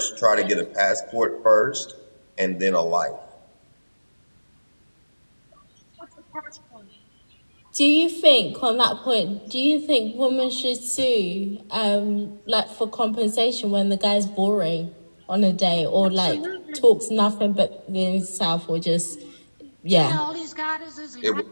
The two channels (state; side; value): inverted; both; correlation -1.00